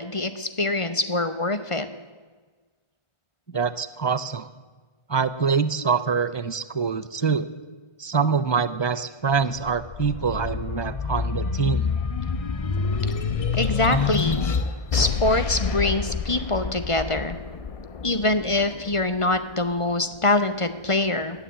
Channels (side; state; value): right; late; 1.5 ms